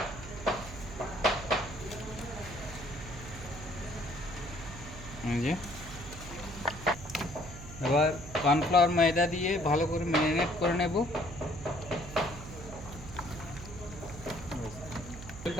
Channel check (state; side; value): noise; right; hum, 12 dB below the sound